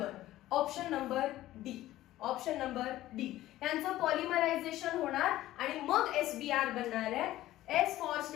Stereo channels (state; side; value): quieter; right; 15.1 dB